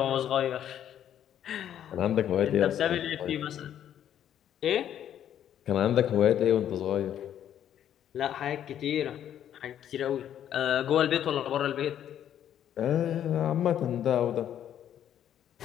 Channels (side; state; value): right; quieter; 10.3 dB